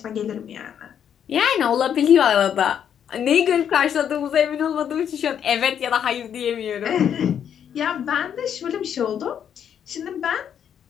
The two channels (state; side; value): quieter; right; 8.8 dB